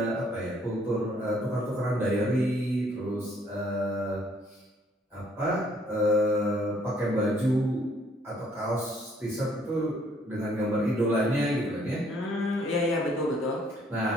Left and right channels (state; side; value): normal; both; correlation 0.64